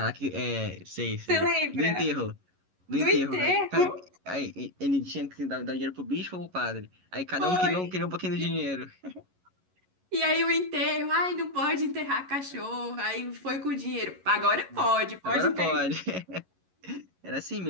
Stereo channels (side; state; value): left; late; 11 ms